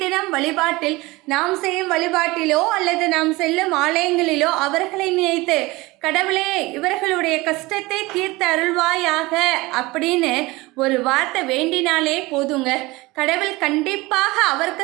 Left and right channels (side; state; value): left; quieter; 21.7 dB